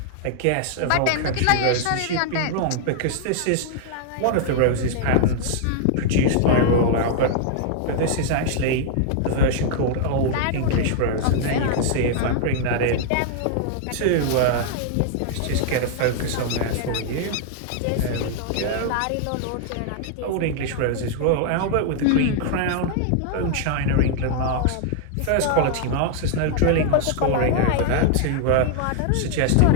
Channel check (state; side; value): different; both; correlation -0.01